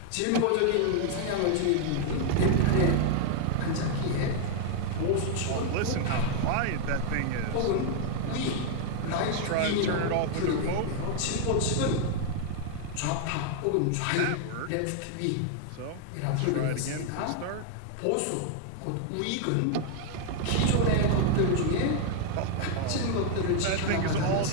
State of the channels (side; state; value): both; different; correlation 0.00